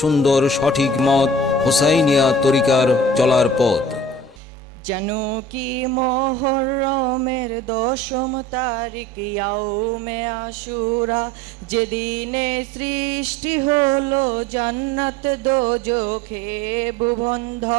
সঠিক মত হোসাইনিয়া তরিকার চলার পথ। যেন কি মুহররমের 10ম তারিখ ইয়াউমে আশুরা, যেদিনে সৃষ্টি হলো জান্নাত দোজখে ভুবন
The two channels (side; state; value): both; normal; correlation 0.44